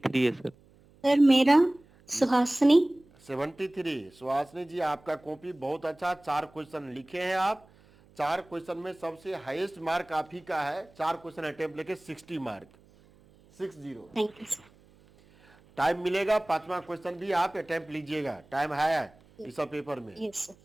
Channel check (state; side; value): noise; right; hum, 28 dB below the sound